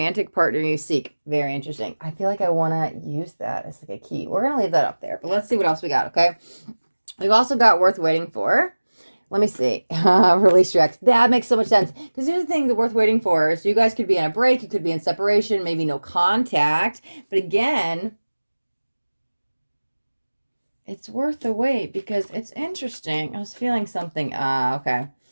partner you seek. Very interesting. I feel like I want to use that as like a key. We're going to leave that up there, but let's see what else we got, okay? We've also got worth waiting for. Let me see. Release your ex. That makes so much sense. Because here's the thing that worth waiting for. So you guys could be on a break. You could be in separation. Maybe no contact. But again, it's worth the wait because it's interesting. I was feeling something. Okay.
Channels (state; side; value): inverted; both; correlation -1.00